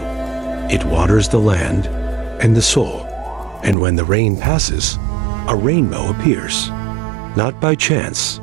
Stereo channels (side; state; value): left; drops out; at 3.8 s